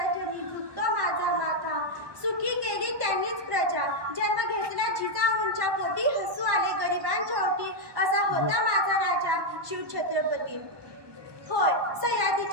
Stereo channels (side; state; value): left; late; 1.2 ms